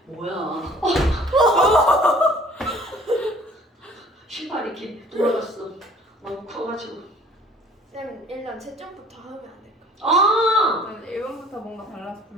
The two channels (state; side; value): normal; both; correlation 0.53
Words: 뭐야. 신발이 이렇게 돌아갔어. 너무 커가지고. 쌤 일단 채점부터 하면 안 될까? 아! 1번부터 뭔가 달라서